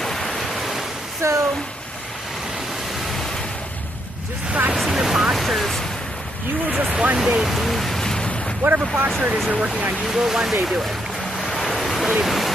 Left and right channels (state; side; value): normal; both; correlation 0.76